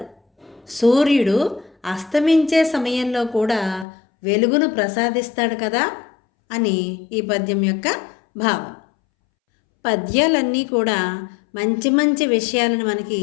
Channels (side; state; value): right; drops out; at 3.9 s